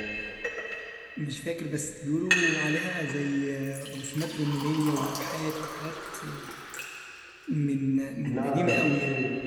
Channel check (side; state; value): both; identical; correlation 1.00